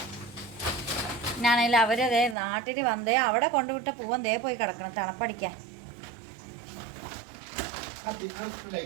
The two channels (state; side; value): drops out; left; at 2.4 s